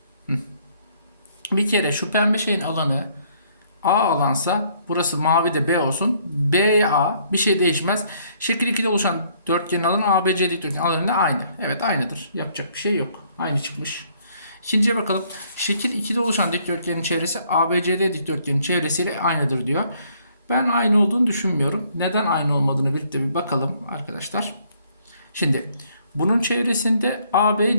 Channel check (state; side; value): inverted; both; correlation -0.65